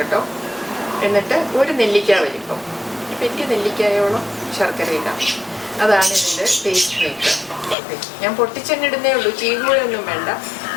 എന്നിട്ട് ഒരു നെല്ലിക്ക വലിപ്പം, വലിയ നെല്ലിക്കായോളം ശർക്കര ഇടാം. അതാണ് ഇതിൻ്റെ ടേസ്റ്റ് മേക്കർ. ഞാൻ പൊട്ടിച്ചെണ്ണിടുന്നേ ഉള്ളൂ, ചീകുകയൊന്നും വേണ്ട.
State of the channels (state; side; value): drops out; right; at 7.8 s